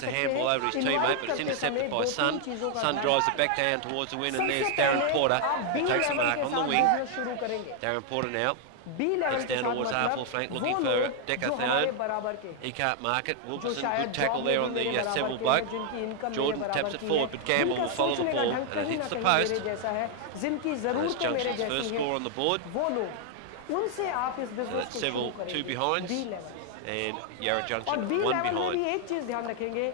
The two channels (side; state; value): both; different; correlation 0.00